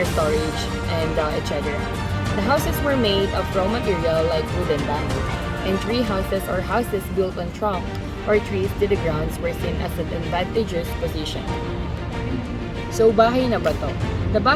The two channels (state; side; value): identical; both; correlation 1.00